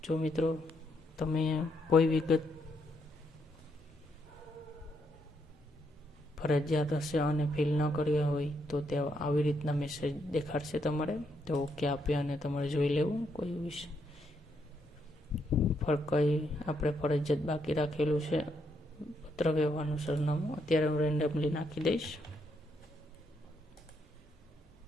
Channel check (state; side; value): normal; both; correlation 0.77